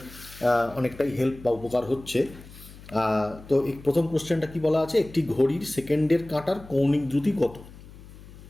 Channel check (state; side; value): noise; left; hum, 18 dB below the sound